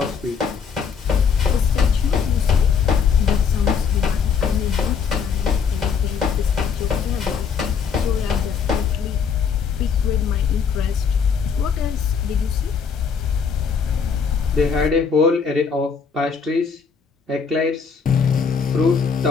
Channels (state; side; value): quieter; right; 6.2 dB